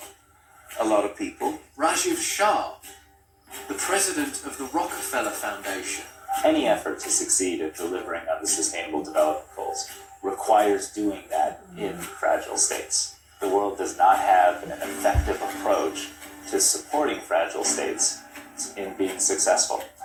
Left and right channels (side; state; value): both; identical; correlation 1.00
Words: a lot of people. Rajiv Shah, the president of the Rockefeller Foundation. Any effort to succeed at delivering on the Sustainable Development Goals requires doing that in fragile states. The world does not have an effective approach to supporting fragile states in being successful,